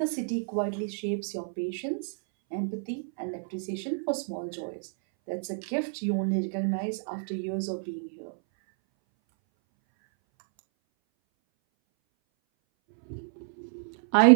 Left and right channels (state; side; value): silent; left; 58 dB below the other